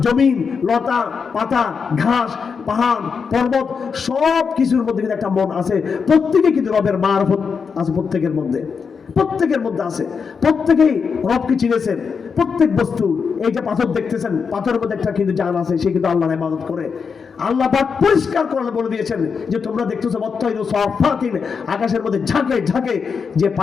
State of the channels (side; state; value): right; quieter; 5.8 dB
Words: জমিন, লতা পাতা, ঘাস, পাহাড়, পর্বত, সব কিছুর মধ্যে কিন্তু একটা মন আছে। প্রত্যেকে কিন্তু রবের মারফত আছে, প্রত্যেকের মধ্যে আছে। প্রত্যেকেই রবকে চিনেছেন। প্রত্যেক বস্তু, এই যে পাথর দেখতেছেন, পাথরের মধ্যে একটা কিন্তু জান আছে, সে কিন্তু আল্লাহর ইবাদত করে। আল্লাহ পাক পরিষ্কার করে বলে দিয়েছেন যে তোমরা দেখতেছো বত্তাইরু সাফাতিন, আকাশের মধ্যে ঝাঁকে ঝাঁকে যে